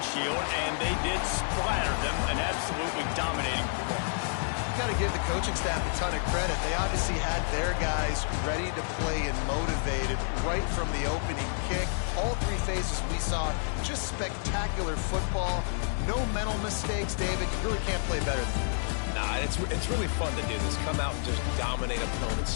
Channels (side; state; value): right; silent; 58 dB below the other